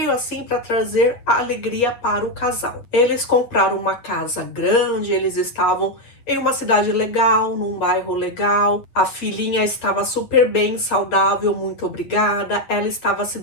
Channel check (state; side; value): late; right; 8.9 ms